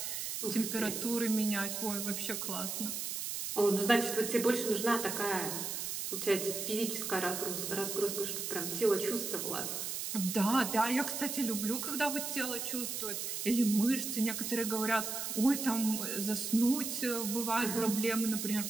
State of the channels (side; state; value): right; noise; hiss, 3 dB below the sound